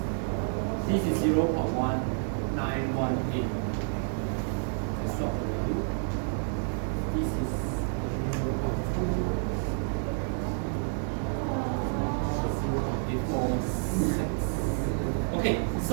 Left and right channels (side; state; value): left; silent; 58 dB below the other